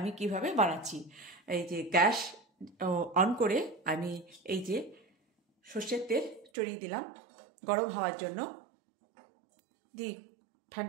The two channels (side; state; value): left; drops out; at 6.5 s